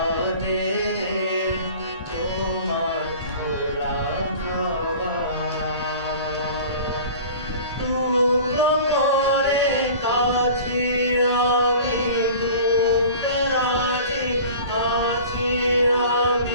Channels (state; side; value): inverted; both; correlation -0.41